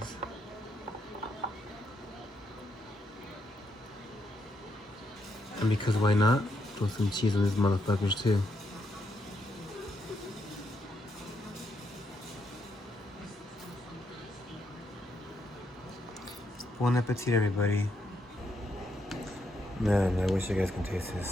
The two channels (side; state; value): both; normal; correlation 0.78